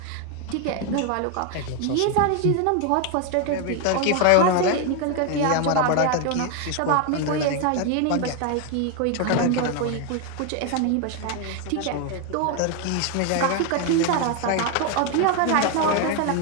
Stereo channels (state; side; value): different; both; correlation 0.01